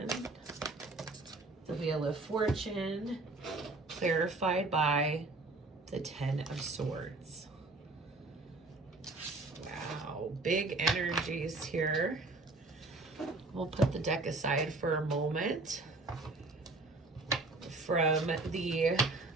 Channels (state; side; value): quieter; left; 3.2 dB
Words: the Wheel of Fortune, clarified by the 10 of Swords. Wow, big energies here. We'll put the deck aside for a moment. From the